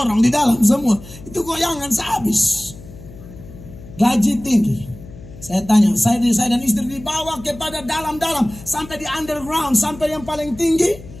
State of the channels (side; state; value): left; noise; hum, 17 dB below the sound